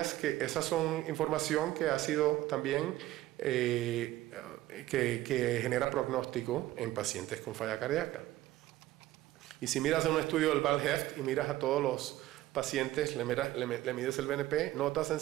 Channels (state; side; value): quieter; left; 15.7 dB